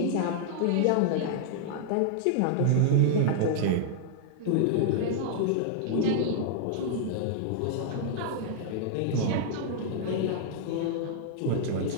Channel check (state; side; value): different; both; correlation -0.01